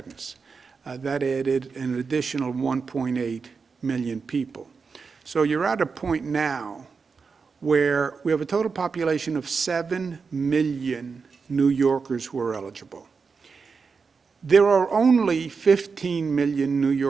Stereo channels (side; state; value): left; quieter; 5.1 dB